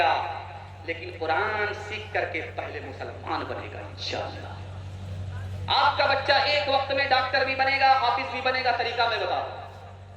لیکن قرآن سیکھ کر کے پہلے مسلمان بنے گا انشاءاللہ۔ آپ کا بچہ ایک وقت میں ڈاکٹر بھی بنے گا، حافظ بھی بنے گا، طریقہ میں بتا دوں۔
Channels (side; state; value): both; identical; correlation 1.00